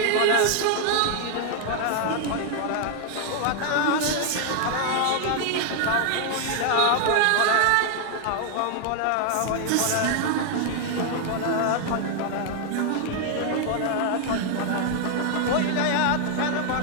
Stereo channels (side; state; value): both; different; correlation 0.00